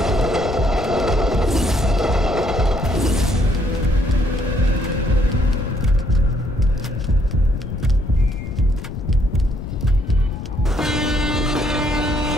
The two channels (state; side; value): noise; left; rumble, 8 dB below the sound